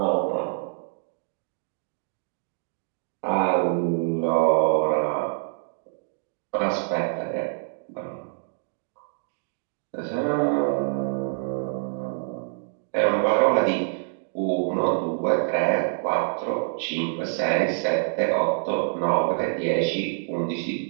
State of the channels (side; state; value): left; silent; digital silence